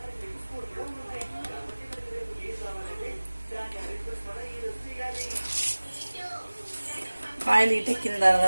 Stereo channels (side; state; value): both; inverted; correlation -1.00